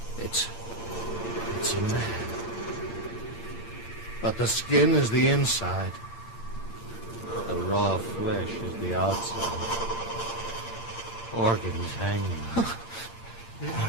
It's a man. But the skin is the inside. The raw flesh is the outside. Organs hanging.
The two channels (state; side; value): late; right; 8.7 ms